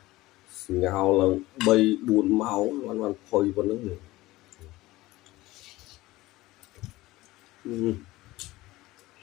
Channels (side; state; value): right; quieter; 18.5 dB